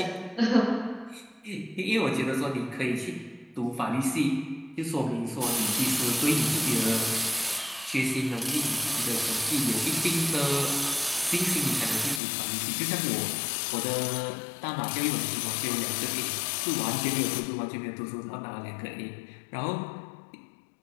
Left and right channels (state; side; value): drops out; right; at 12.2 s